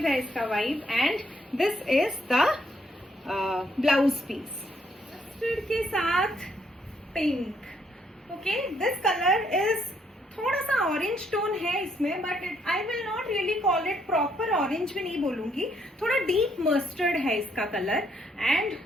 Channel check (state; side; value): normal; both; correlation 0.71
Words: है इसका vibe. And this is the blouse piece के साथ pink. Okay, this colour is थोड़ा सा ऑरेंज टोन है इसमें, but I will not really call it proper orange भी नहीं बोलूंगी, थोड़ा डीप मस्टर्ड है इसका colour. And